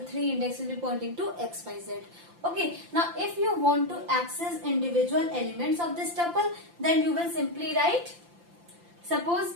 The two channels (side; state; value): left; late; 5.8 ms